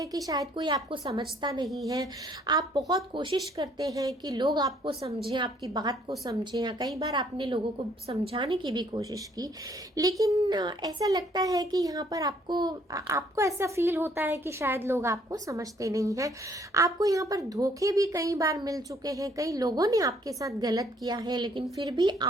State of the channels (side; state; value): both; normal; correlation 0.64